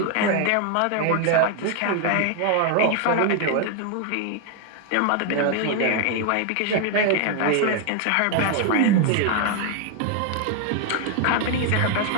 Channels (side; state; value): both; different; correlation 0.00